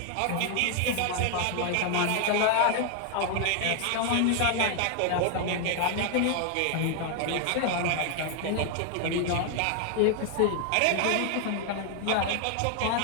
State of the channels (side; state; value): both; different; correlation 0.00